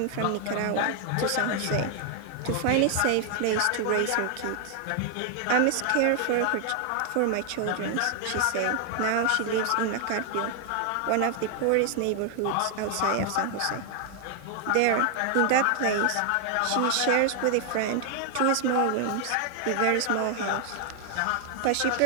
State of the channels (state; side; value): different; both; correlation 0.00